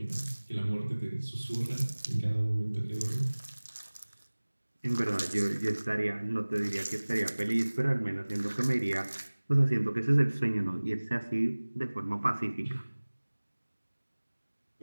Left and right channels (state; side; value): inverted; both; correlation -1.00